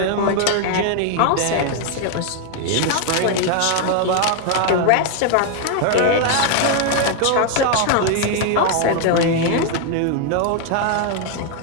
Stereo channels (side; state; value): both; different; correlation 0.00